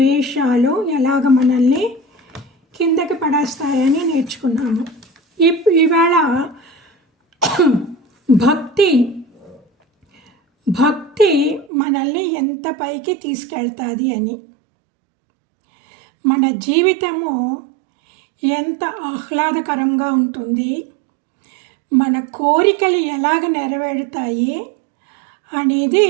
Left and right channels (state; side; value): drops out; left; at 11.7 s